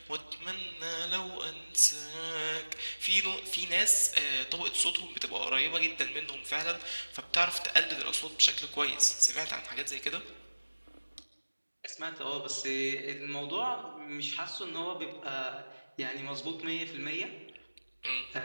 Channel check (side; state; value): both; inverted; correlation -1.00